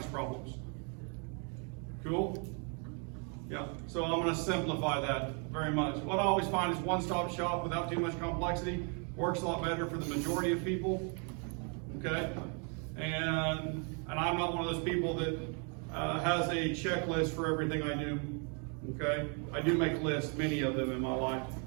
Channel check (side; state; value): left; quieter; 37.7 dB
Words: problems. Cool? Yeah, so I'm going to simplify that very much. What I always find is one-stop shop without too much complexity works a lot better for the majority of people. Okay, and I'm not one of those people that has a checklist for everything I do. Okay, I do make lists, many of them in my life,